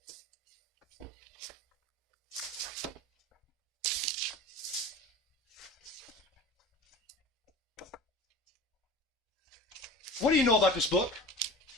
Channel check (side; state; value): both; normal; correlation 0.37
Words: What do you know about this book?